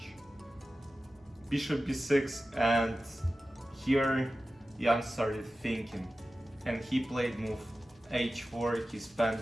Bishop b6, and here Jan started thinking and he played move h4. He spent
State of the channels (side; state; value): both; normal; correlation 0.94